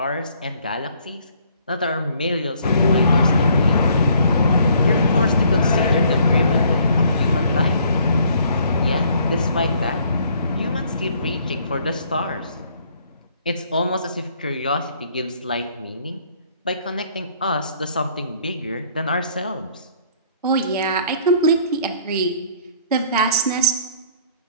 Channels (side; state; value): both; inverted; correlation -0.61